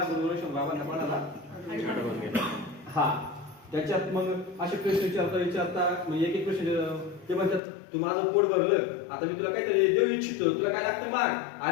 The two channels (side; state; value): right; drops out; at 7.6 s